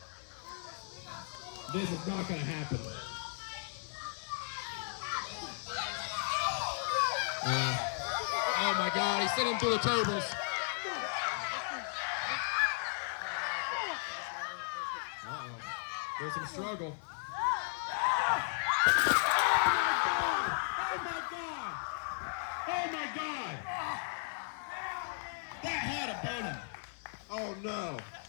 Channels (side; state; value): right; silent; 54 dB below the other